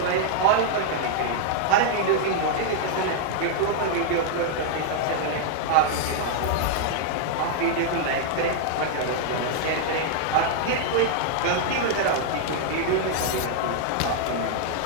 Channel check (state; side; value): different; both; correlation -0.01